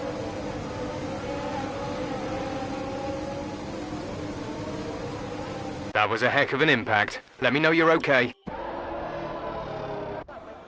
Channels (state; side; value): identical; both; correlation 1.00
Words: That was a heck of an impact. Let me know you're okay.